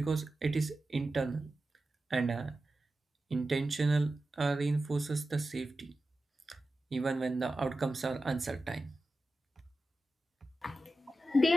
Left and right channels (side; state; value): both; normal; correlation 0.93